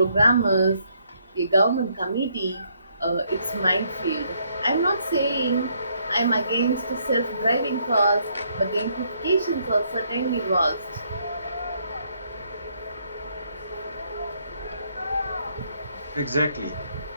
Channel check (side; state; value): both; inverted; correlation -0.71